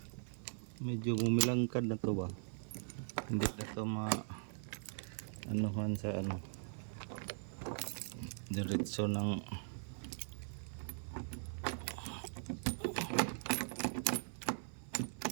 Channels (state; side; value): silent; left; 51 dB below the other